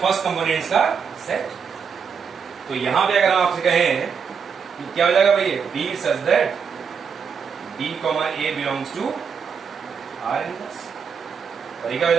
कंपोनेंट्स का सेट। तो यहां पे अगर हम आपसे कहें कि क्या हो जाएगा भाई, B such that B comma A belongs to R inverse, और ये क्या हो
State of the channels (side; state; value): left; quieter; 6.4 dB